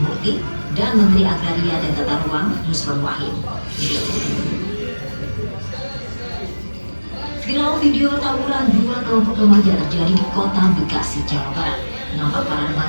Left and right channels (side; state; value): both; inverted; correlation -1.00